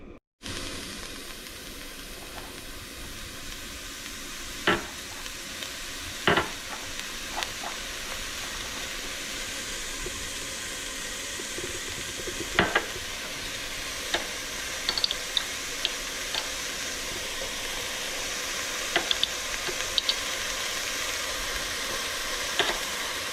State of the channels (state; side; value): identical; both; correlation 1.00